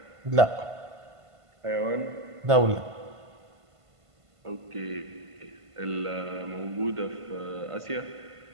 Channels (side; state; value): left; late; 1.5 ms